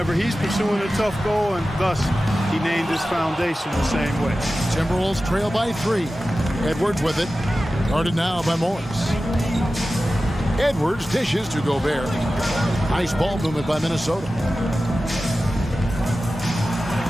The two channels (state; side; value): normal; both; correlation 0.95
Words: he's pursuing a tough goal, and thus he named his foundation the same way. Timberwolves trail by 3. Edwards with it. Guarded now by Morris. Edwards dishes to Gobert. Nice ball movement by Minnesota.